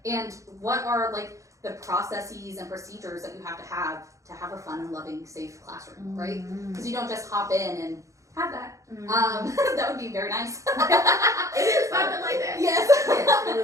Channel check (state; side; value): late; left; 0.15 ms